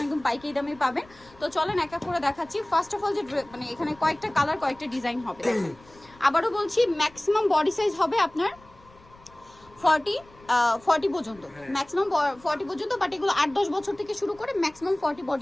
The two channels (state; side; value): noise; left; rumble, 26 dB below the sound